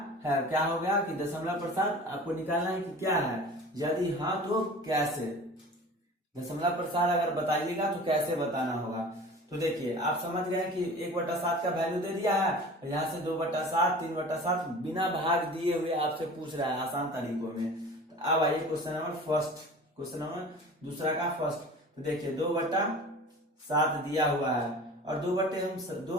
है, क्या हो गया कि दशमलव प्रसार आपको निकालना है कि क्या है, यदि हाँ तो कैसे, दशमलव प्रसार अगर बताइएगा तो कैसे बताना होगा। तो देखिए आप समझ गए कि 1/7 का वैल्यू दे दिया है, यहाँ से 2/7, 3/7 बिना भाग दिए हुए आपसे पूछ रहा है आसान तरीकों में। तो अब आइए question number first, question number दूसरा का फर्स्ट। तो देखिए 2/7 दिया हुआ है और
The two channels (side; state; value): both; normal; correlation 0.40